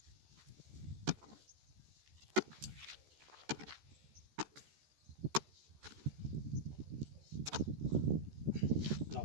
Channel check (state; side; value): late; left; 13 ms